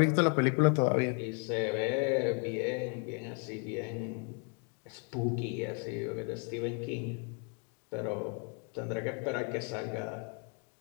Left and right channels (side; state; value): right; quieter; 38.6 dB